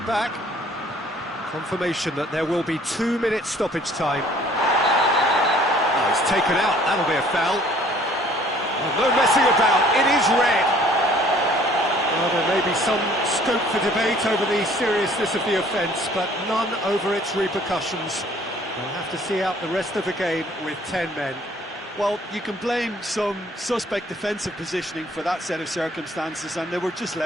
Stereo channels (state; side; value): normal; both; correlation 0.56